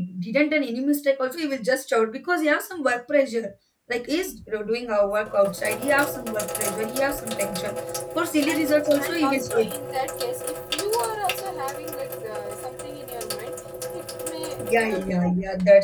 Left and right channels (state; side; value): identical; both; correlation 1.00